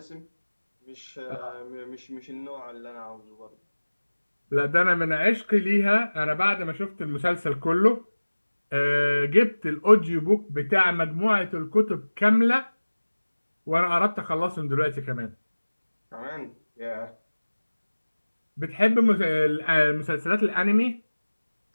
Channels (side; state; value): both; inverted; correlation -1.00